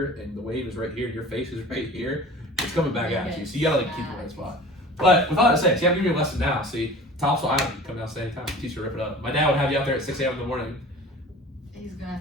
and the wave is right here and your face is right here, it's coming back at you. So you gotta like keep the right spot. But with all that said, see, I'm giving you a lesson now. See, Topsail Island, you can come down and anytime. Teach you to rip it up. My dad would have you out there at 6 a.m. in the morning. He's gonna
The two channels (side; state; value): both; normal; correlation 0.41